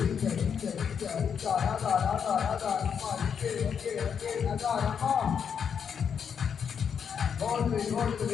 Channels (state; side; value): quieter; right; 7.2 dB